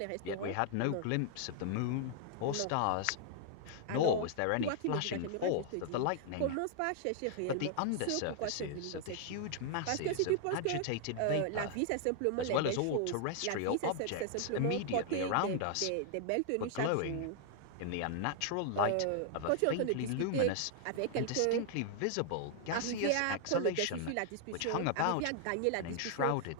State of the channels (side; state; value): both; different; correlation 0.00